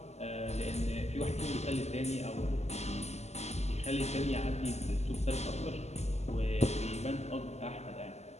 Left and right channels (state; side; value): late; right; 0.32 ms